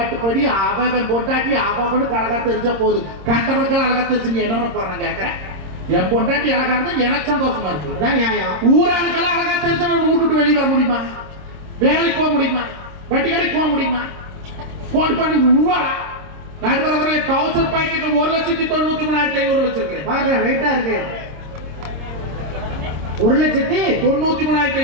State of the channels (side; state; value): left; late; 26 ms